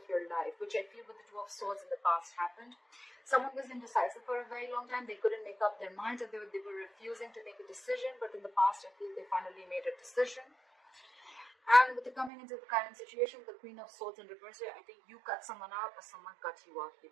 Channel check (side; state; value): left; drops out; at 12.3 s